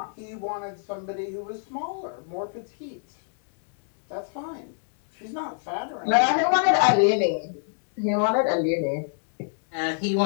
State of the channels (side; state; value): right; silent; digital silence